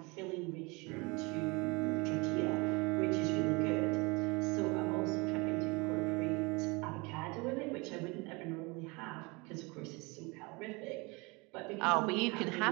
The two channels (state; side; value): quieter; left; 27.0 dB